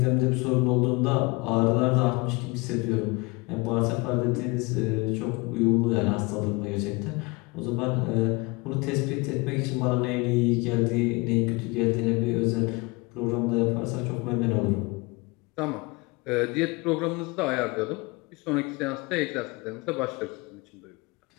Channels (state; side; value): quieter; right; 26.3 dB